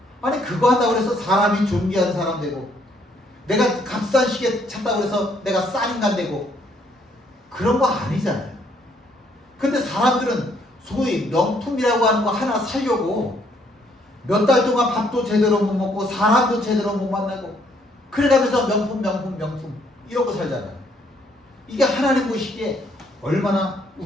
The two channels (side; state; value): both; normal; correlation 0.68